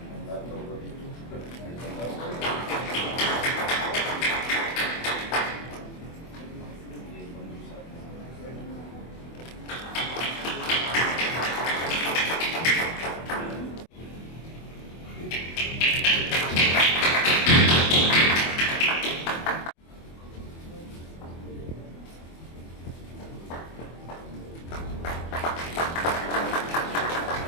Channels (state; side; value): late; right; 24 ms